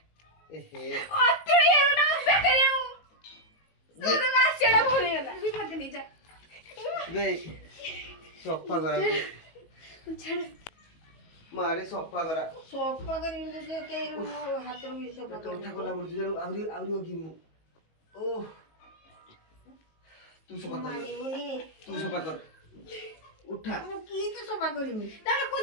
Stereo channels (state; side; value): late; right; 19 ms